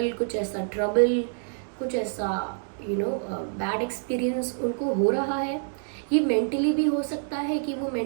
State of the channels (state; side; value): silent; left; digital silence